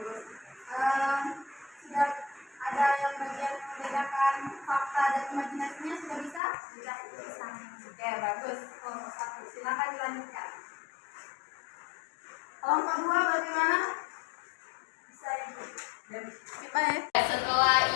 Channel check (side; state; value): right; drops out; at 6.4 s